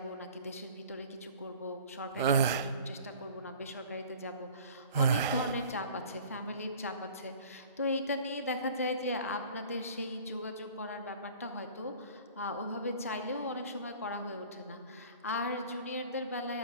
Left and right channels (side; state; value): both; inverted; correlation -0.46